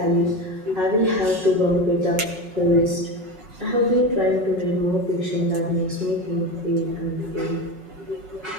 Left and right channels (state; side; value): late; left; 5.4 ms